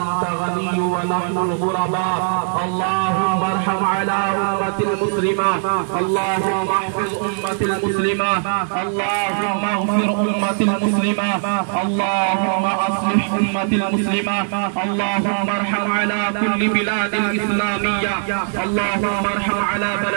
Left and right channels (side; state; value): left; silent; digital silence